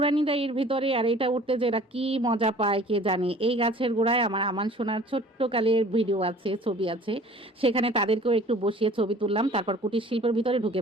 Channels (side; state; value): both; normal; correlation 0.49